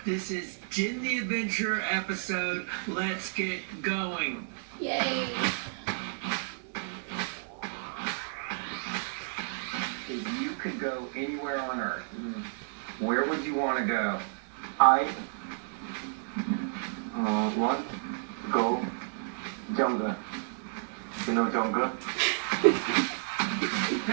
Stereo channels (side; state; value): left; silent; 57 dB below the other